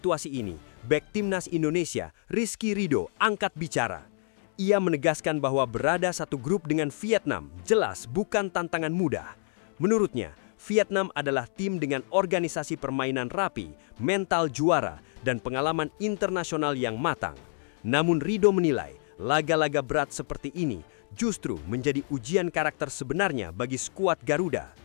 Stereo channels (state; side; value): silent; right; 59 dB below the other